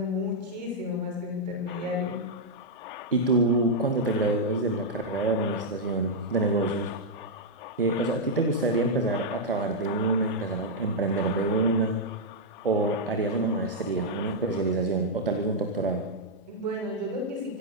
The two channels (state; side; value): normal; both; correlation -0.05